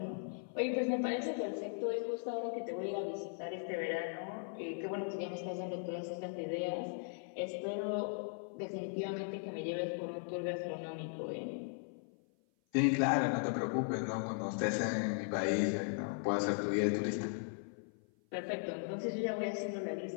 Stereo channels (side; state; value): right; silent; 52 dB below the other